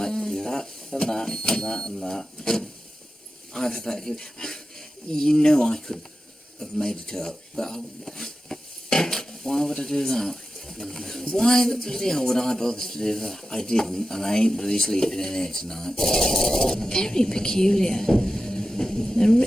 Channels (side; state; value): both; normal; correlation 0.93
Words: That and that and that and that. I've had that. You know I could have made it up, but why would I do that? Why the bloody hell would I bother to do that? I didn't, and I ain't bloody sleeping in here tonight. Very peculiar. And